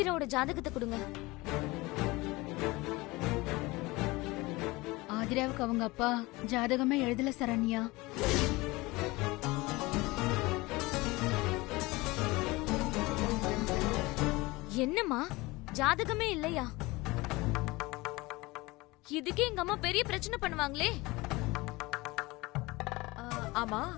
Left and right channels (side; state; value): right; quieter; 22.0 dB